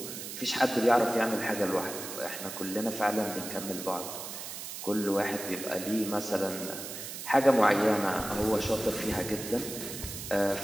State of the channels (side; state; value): right; noise; hiss, 8 dB below the sound